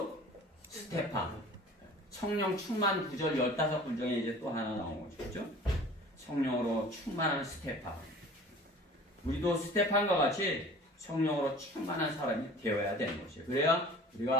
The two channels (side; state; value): both; normal; correlation 0.45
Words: 스테판. 성령 충만 구절 15군 중에 이제 또 하나 나온 거죠. 그렇죠? 성령으로 충만한 스테판. 우리도 스테판과 같이 성령으로 충만한 사람이 되어야 되는 것이에요. 그래야